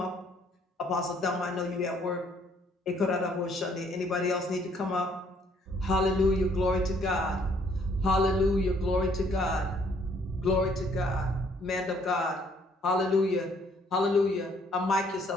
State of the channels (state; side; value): normal; both; correlation 0.64